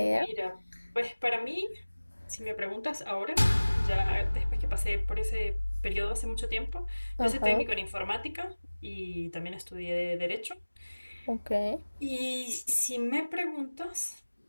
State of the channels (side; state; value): both; inverted; correlation -1.00